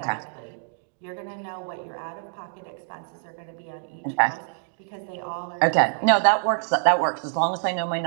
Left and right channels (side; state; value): left; silent; digital silence